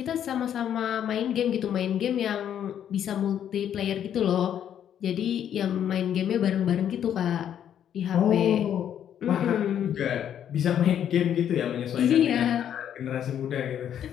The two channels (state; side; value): quieter; right; 9.7 dB